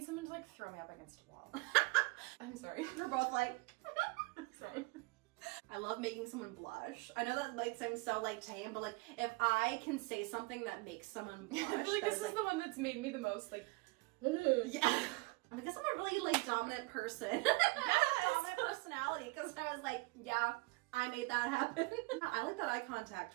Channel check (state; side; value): quieter; left; 25.6 dB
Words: someone to like throw me up against a wall. I'm sorry. We're both like, Sorry. I love making someone blush. I know that might seem so like tame, but like if I can say something that makes someone blush, I feel like that this is the one that's made me the most like, yeah. I guess I'm a really like dominant person. I have a dominant personality because I was like, yeah, I made that happen. I like that eye